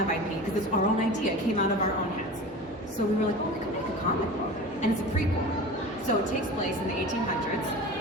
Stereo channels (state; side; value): normal; both; correlation 0.34